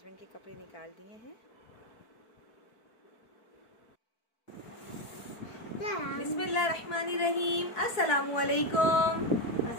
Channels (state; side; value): late; right; 4.7 ms